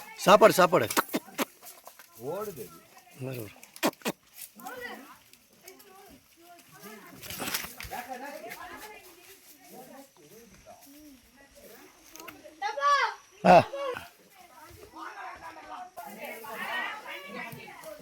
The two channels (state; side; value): identical; both; correlation 1.00